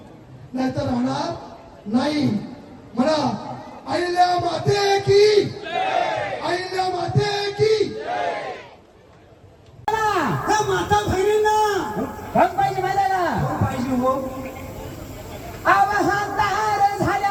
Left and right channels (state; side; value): identical; both; correlation 1.00